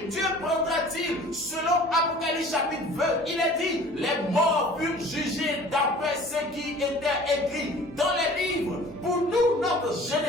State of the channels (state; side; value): normal; both; correlation 0.46